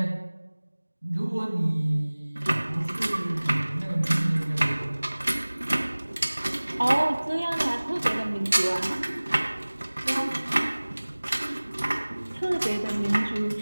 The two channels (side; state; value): both; inverted; correlation -1.00